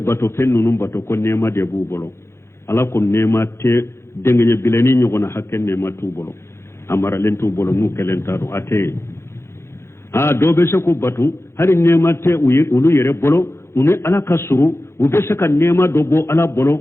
fe nunu bato ko nema de bu bolo ala ko nema te dengenye bileni nyogona hakken nema tu bolo amara len tu bolo nu kelentaro ate do be se ko batu hari nema te ulu yere bolo unu ala kasuru ube se ka nema do bo ala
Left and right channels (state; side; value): late; right; 0.13 ms